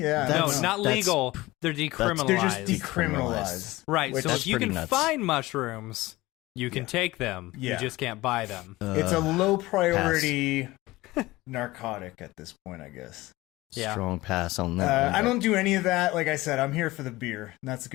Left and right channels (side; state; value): right; quieter; 19.4 dB